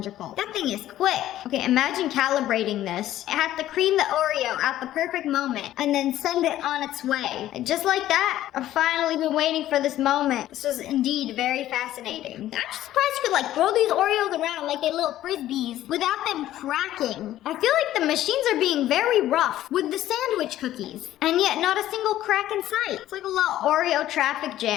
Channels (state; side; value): quieter; right; 13.4 dB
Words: That thing is quick. Okay, imagine calibrating this. It has to cream the Oreo at the perfect moment and then send it on its way. And just like that, I've finally been waiting for this moment. This was indeed very fascinating. I'm just surprised you could like throw these Oreos around like they're little frisbees without them cracking. I feel like the machines are being very rough with the sandwich cookies, and yet not a single crack in sight. It's like a little Oreo traffic